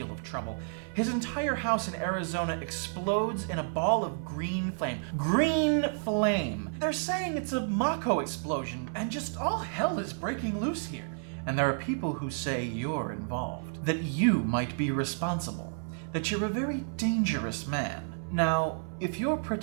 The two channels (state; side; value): silent; left; 57 dB below the other